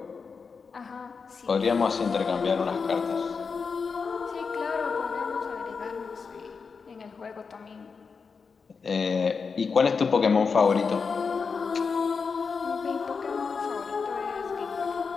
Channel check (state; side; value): quieter; right; 5.3 dB